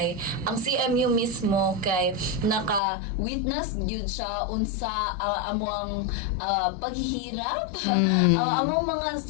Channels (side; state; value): right; drops out; at 2.8 s